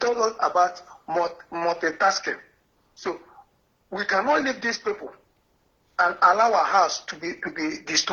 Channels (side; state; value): both; identical; correlation 1.00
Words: us about multitasking. So we cannot leave these people and allow our house to be